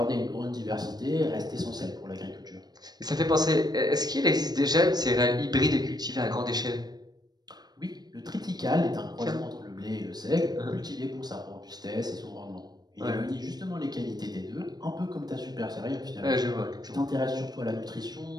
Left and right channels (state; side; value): late; left; 0.19 ms